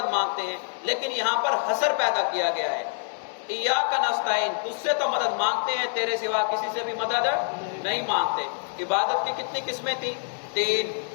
مانگتے ہیں، لیکن یہاں پر حصر پیدا کیا گیا ہے۔ ایاک نستعین، تجھ سے تو مدد مانگتے ہیں، تیرے سوا کسی سے بھی مدد نہیں مانگتے۔ عبادت کی کتنی قسمیں تھیں؟ 3۔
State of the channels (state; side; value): silent; right; digital silence